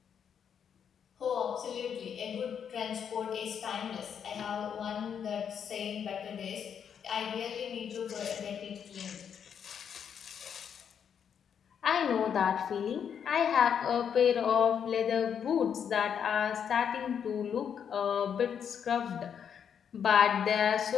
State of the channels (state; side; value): quieter; right; 7.9 dB